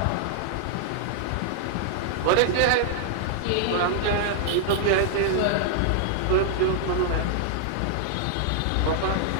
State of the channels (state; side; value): different; both; correlation -0.01